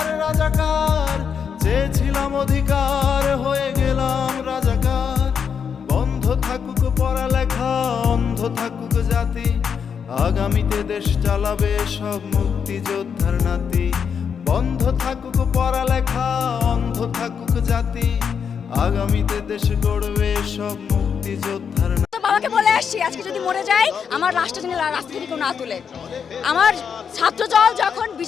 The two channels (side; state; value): right; quieter; 6.9 dB